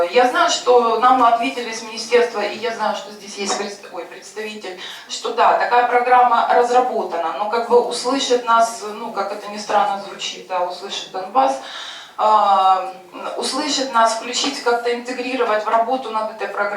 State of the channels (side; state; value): both; identical; correlation 1.00